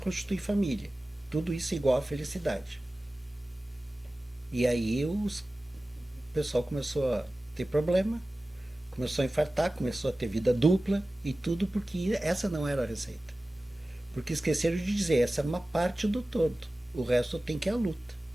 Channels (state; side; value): normal; both; correlation 0.96